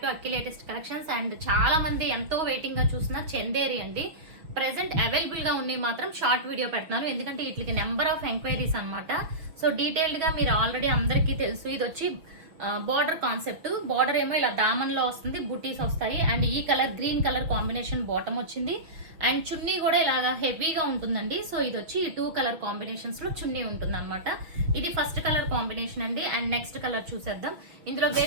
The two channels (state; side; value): late; left; 6.1 ms